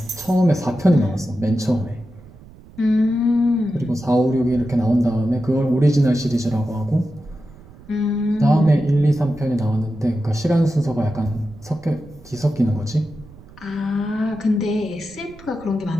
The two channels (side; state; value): right; noise; rumble, 21 dB below the sound